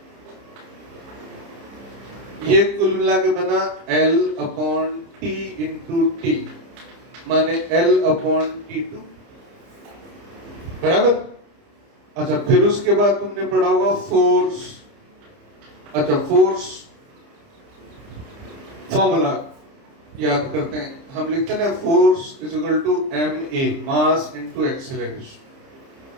ये कुल मिला के बना L upon T into T, माने L अपॉन T2, बराबर। अच्छा, फिर उसके बाद तुमने पढ़ा होगा फोर्स। अच्छा, फोर्स फॉर्मूला याद करते हैं, हम लिखते हैं ना, force is equal to ma, mass into acceleration.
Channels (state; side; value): late; left; 30 ms